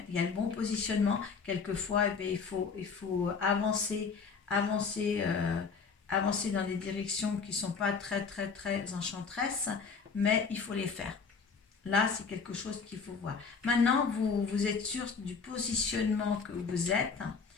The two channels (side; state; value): right; quieter; 5.3 dB